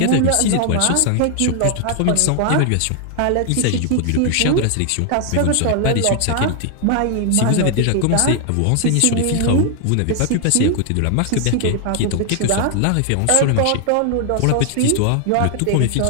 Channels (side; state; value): both; different; correlation 0.00